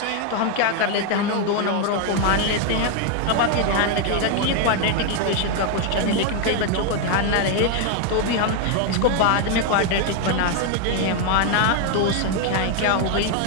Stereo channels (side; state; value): both; different; correlation 0.01